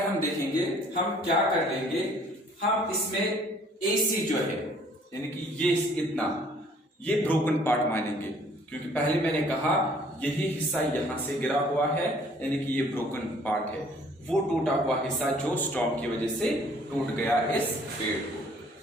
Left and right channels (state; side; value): normal; both; correlation 0.57